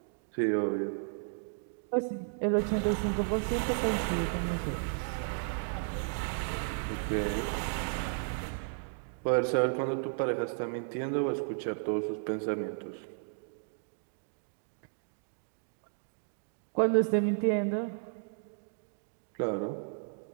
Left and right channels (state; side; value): silent; left; digital silence